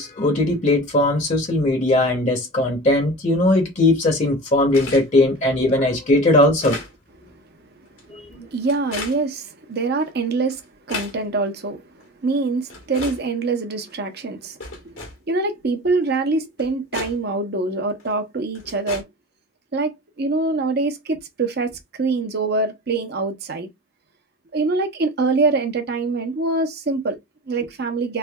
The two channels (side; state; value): both; normal; correlation 0.34